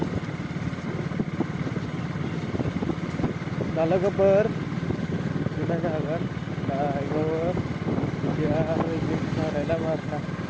kalau keber kita jangan itu dia izin ada nama ini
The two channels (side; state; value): both; identical; correlation 1.00